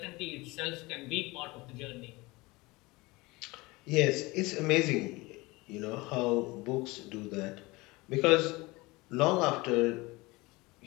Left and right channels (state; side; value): quieter; right; 22.7 dB